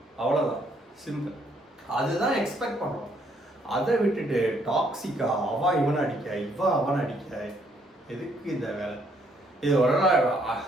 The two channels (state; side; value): normal; both; correlation 0.69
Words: அவ்வளோதான், சிம்பிள். அதுதான் எக்ஸ்பெக்ட் பண்ணுறோம். அதை விட்டுட்டு டாக்ஸிக்கா அவன் இவனை அடிக்க, இவன் அவனை அடிக்க, எதுக்கு இந்த வேலை? இது ஒரு